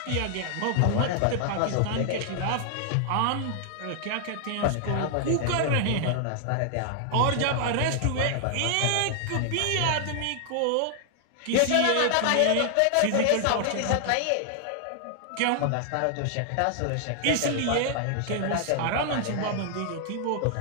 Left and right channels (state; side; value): different; both; correlation 0.00